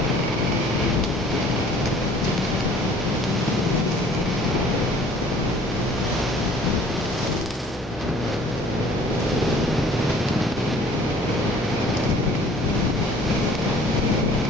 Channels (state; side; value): normal; both; correlation 0.53